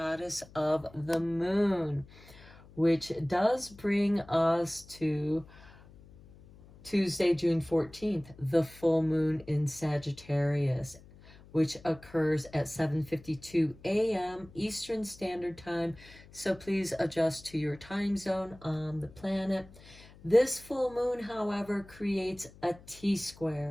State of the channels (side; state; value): left; noise; hum, 22 dB below the sound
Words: of the Moon, which does bring us to Tuesday, June 14th, the full moon in Sagittarius, which occurs at 7:52 a.m. Eastern Standard Time. So please adjust to your time zone on the planet. This full moon, however, creates a